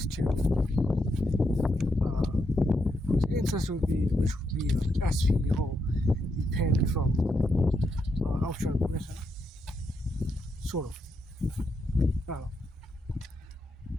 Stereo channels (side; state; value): both; normal; correlation 0.81